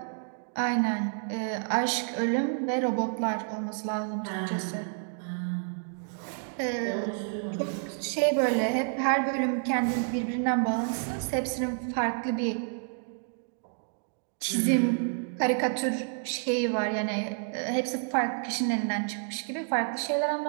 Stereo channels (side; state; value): left; silent; 58 dB below the other